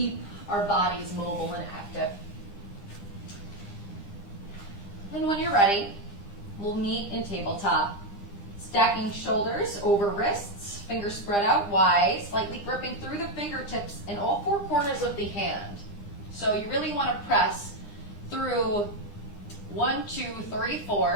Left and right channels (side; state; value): right; late; 23 ms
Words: our bodies mobile and active. And when you're ready, we'll meet in tabletop. Stacking shoulders over wrists, fingers spread out wide, slightly gripping through the fingertips in all four corners of the hand. So you really want to press through 1, 2, 3,